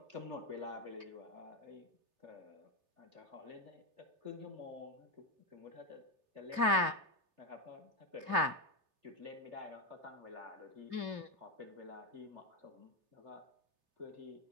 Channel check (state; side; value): late; left; 3.0 ms